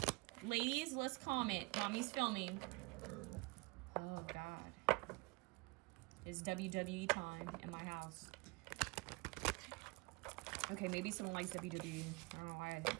Ladies, let's comment. Mommy's filming. Oh God, it's WWE time in my house. Okay, maybe someone likes WWE. I don't know why I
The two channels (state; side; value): quieter; left; 27.0 dB